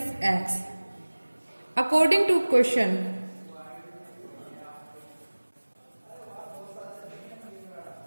x. According to question,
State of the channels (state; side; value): inverted; both; correlation -1.00